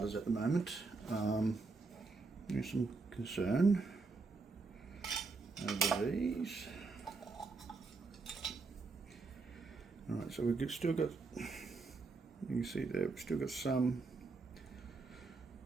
at the moment. There's some concern over these. All right, so we've still got, you can see there, we've still got some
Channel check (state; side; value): quieter; left; 4.0 dB